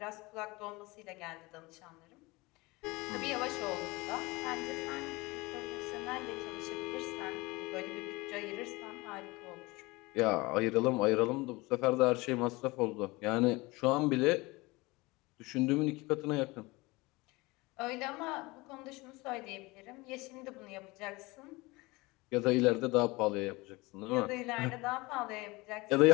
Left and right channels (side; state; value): right; quieter; 23.0 dB